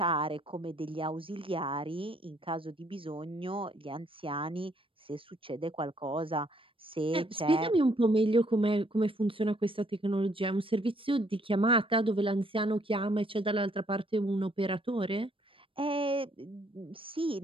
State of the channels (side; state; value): left; late; 0.26 ms